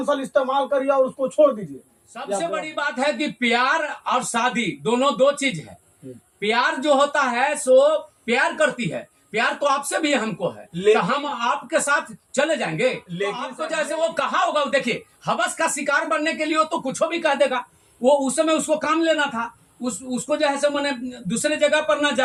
साल इस्तेमाल करिए और उसको छोड़ दीजिए? सबसे बड़ी बात है कि प्यार और शादी दोनों दो चीज है। प्यार जो होता है सो प्यार करती है, प्यार तो आपसे भी हमको है, तो हम आपके साथ चले जाएंगे। लेकिन आपको जैसे वो कहा होगा, देखिए हवस का शिकार बनने के लिए तो कुछ भी कह देगा। वो उस समय उसको काम लेना था, उसको जो है सो मैंने दूसरे जगह पर ना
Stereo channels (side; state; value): both; identical; correlation 1.00